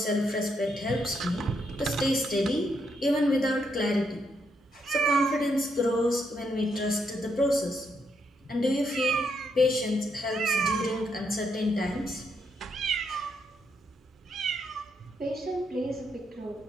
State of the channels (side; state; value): both; normal; correlation 0.77